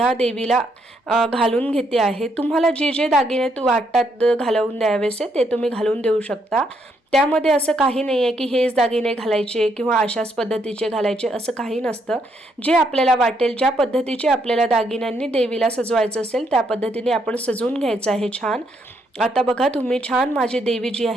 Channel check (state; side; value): normal; both; correlation 0.75